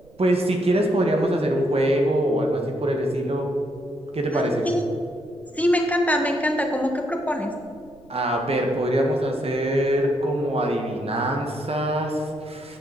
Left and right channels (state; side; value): noise; right; rumble, 27 dB below the sound